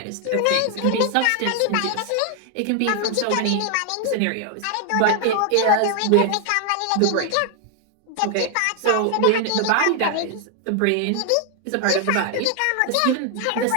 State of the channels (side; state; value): both; different; correlation 0.00